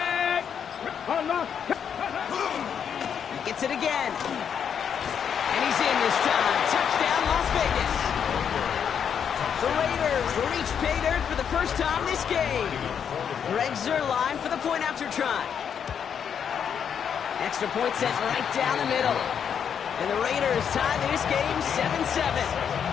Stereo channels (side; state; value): right; quieter; 7.8 dB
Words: Unlock. He gets it again. And he's in this time. Touchdown, Las Vegas. The Raiders reach pay dirt for the first time this game. Greg Zuerlein for the point after try. Extra point set right down the middle. And the Raiders tie this game 7-7.